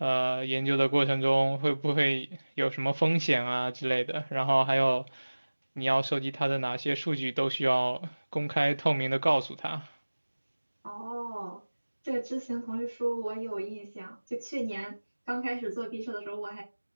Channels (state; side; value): inverted; both; correlation -1.00